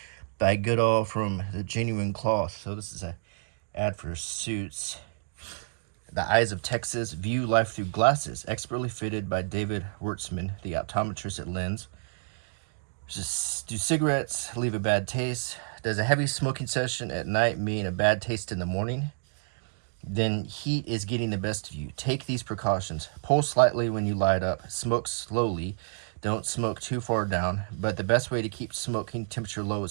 by Goodall from the genuine cloth. So this is an ad for suits. The Eyes of Texas, view life through glasses, expertly fitted by David Wertzman, the optometrist at Lens. Do cigarettes leave a bad taste? Does a heavy smoking session at night mean a bad taste in the morning? Then heat is getting the best of you. Take these precautions. Pull slightly when you light up. Smoke slowly. Don't smoke too far down. But the best way to keep smoking temperature low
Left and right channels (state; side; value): silent; left; digital silence